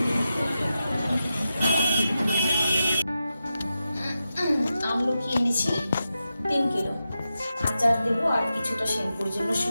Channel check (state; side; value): inverted; both; correlation -0.90